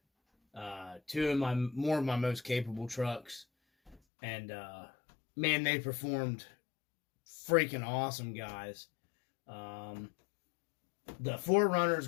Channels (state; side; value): drops out; right; at 4.0 s